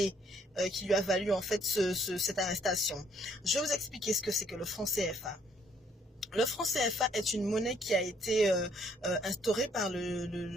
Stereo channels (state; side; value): normal; both; correlation 0.66